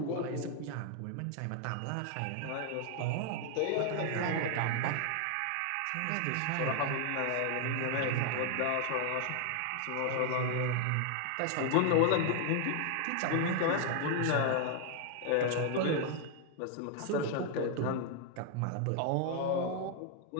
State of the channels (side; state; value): both; different; correlation 0.00